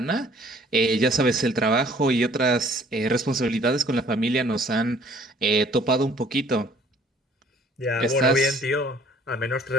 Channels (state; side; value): normal; both; correlation 0.57